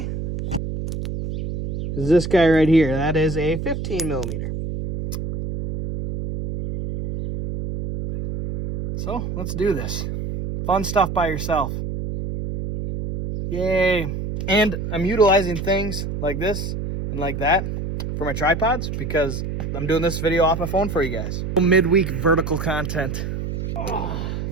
is this guy right here. That is a 15 millimeter. So let's do this. Fun stuff by yourself. Yay. And I'm utilizing things like this and like that for my tripods because I'm doing this video off my phone for you guys. Midweek vertical content. Oh,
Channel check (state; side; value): noise; right; hum, 4 dB below the sound